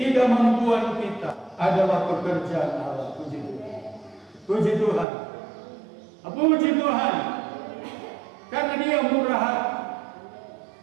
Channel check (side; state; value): left; drops out; at 5.1 s